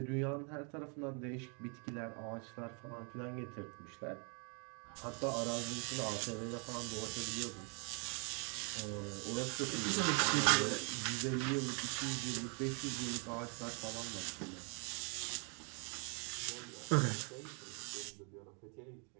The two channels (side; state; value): left; quieter; 37.9 dB